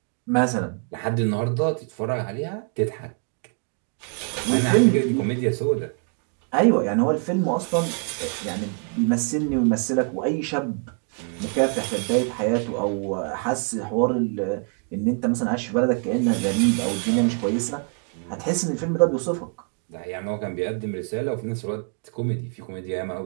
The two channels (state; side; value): quieter; left; 37.9 dB